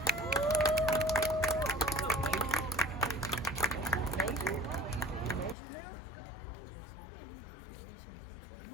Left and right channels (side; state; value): right; drops out; at 5.6 s